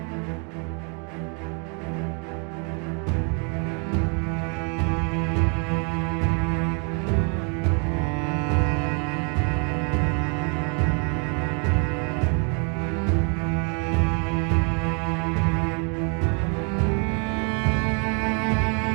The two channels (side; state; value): left; quieter; 37.4 dB